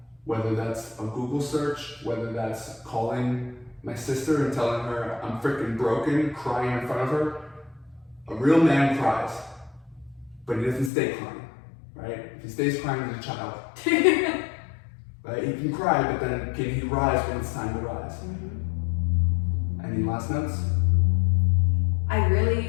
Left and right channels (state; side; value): drops out; right; at 10.9 s